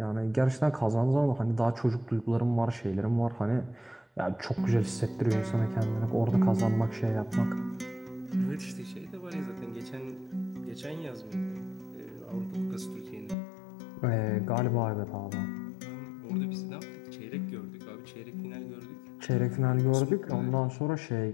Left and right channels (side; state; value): right; drops out; at 13.4 s